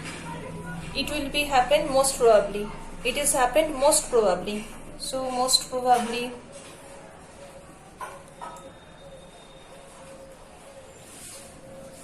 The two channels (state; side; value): identical; both; correlation 1.00